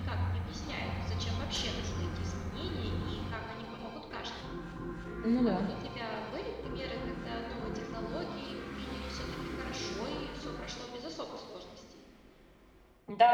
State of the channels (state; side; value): identical; both; correlation 1.00